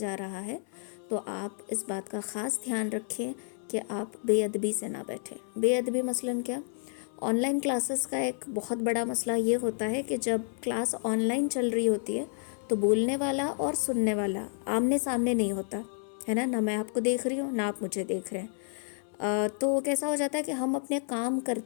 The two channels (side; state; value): right; silent; 58 dB below the other